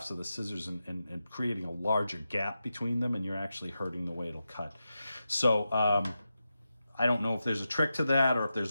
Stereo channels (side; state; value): both; inverted; correlation -0.90